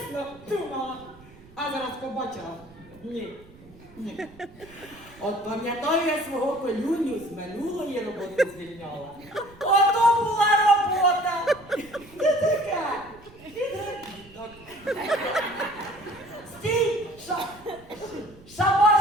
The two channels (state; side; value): noise; right; rumble, 23 dB below the sound